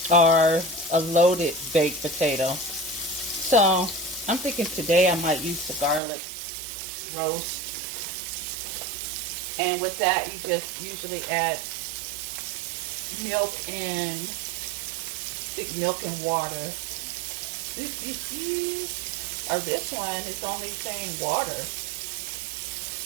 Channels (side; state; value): left; drops out; at 6.0 s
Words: or a loaded baked potato. So I'm thinking today I might use the garlic roast. And with that, you just usually add milk and water. Or this one is only saying water.